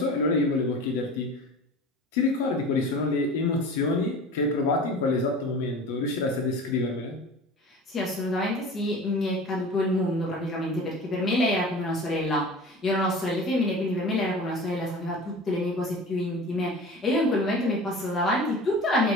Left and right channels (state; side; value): normal; both; correlation 0.38